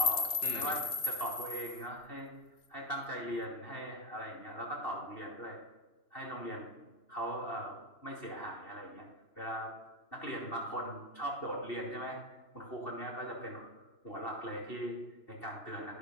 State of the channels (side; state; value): right; late; 3.1 ms